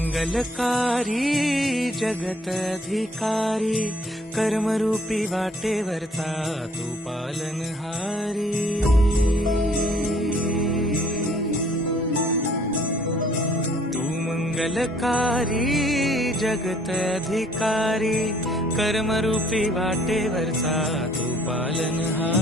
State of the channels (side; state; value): both; normal; correlation 0.60